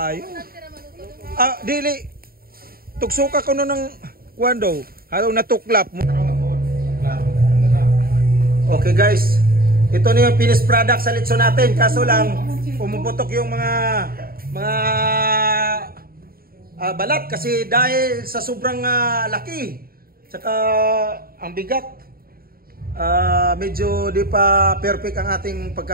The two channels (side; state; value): left; late; 0.43 ms